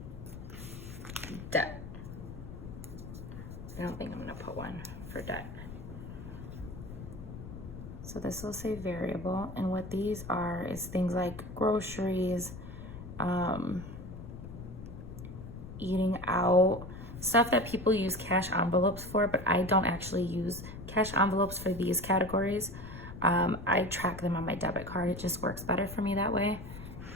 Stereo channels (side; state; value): left; noise; rumble, 11 dB below the sound